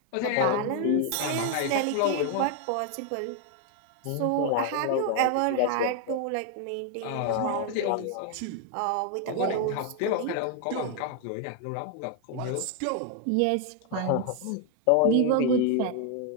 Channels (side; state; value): both; different; correlation 0.00